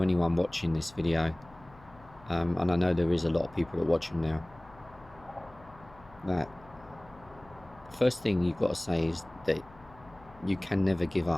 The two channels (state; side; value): noise; left; hum, 23 dB below the sound